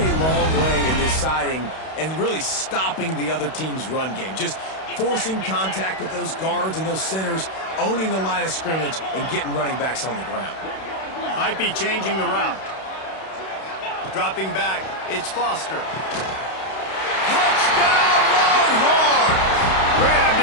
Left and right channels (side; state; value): right; late; 31 ms